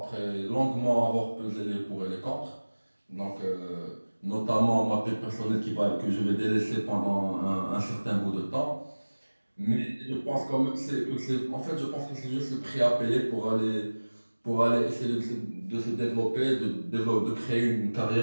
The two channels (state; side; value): inverted; both; correlation -1.00